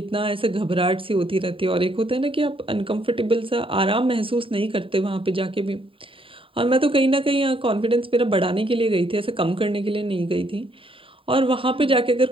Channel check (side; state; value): left; late; 0.26 ms